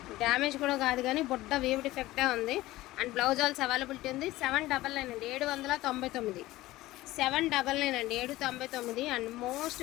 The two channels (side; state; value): right; quieter; 17.4 dB